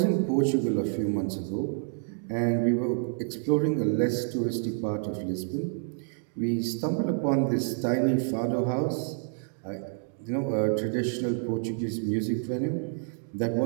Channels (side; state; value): left; silent; digital silence